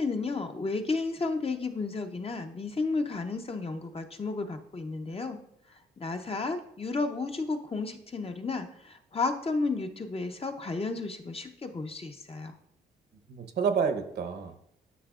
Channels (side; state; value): both; normal; correlation 0.63